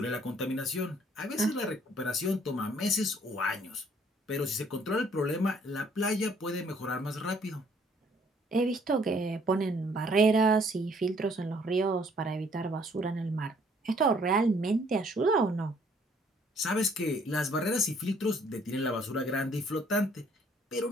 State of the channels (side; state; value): both; normal; correlation 0.62